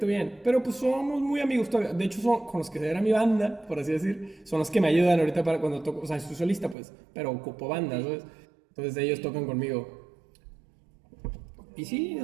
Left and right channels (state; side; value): drops out; left; at 6.8 s